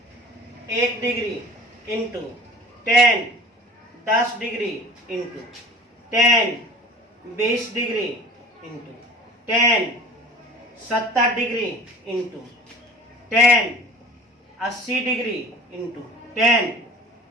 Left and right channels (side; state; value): both; normal; correlation 0.43